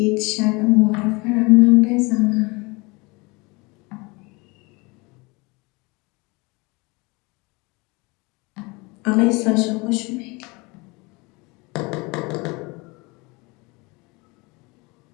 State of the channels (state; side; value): quieter; right; 26.3 dB